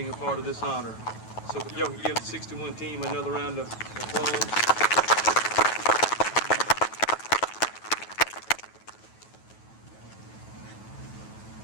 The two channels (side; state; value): right; late; 9.2 ms